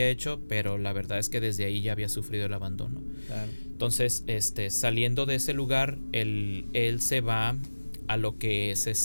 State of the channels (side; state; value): both; inverted; correlation -1.00